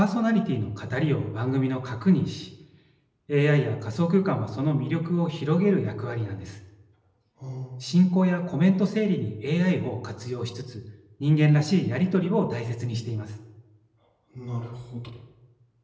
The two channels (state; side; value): identical; both; correlation 1.00